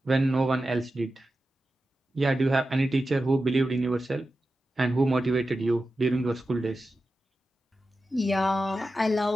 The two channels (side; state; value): both; normal; correlation 0.92